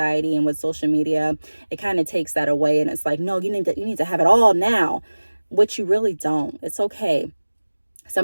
and with social media, it kind of takes that away, and it's like, no, you need to have it all now, which you really don't. It's okay.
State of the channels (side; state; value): both; inverted; correlation -1.00